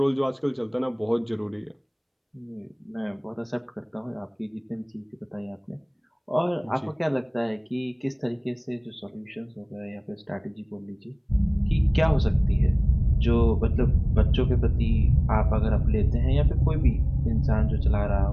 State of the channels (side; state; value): both; identical; correlation 1.00